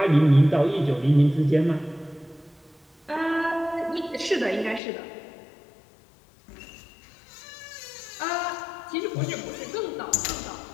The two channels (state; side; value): drops out; right; at 4.8 s